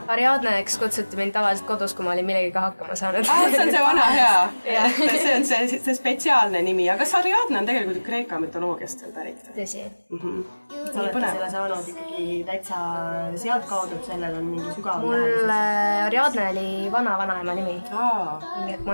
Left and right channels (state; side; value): inverted; both; correlation -1.00